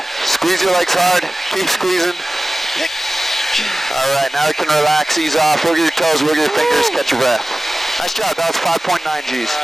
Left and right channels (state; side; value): normal; both; correlation 0.97